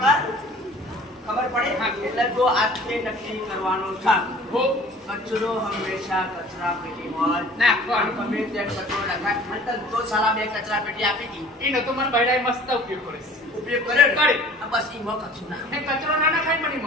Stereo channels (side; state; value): both; normal; correlation 0.48